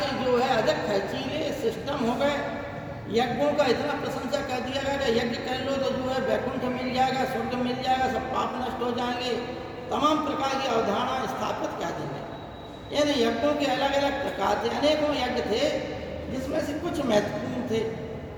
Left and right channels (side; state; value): both; identical; correlation 1.00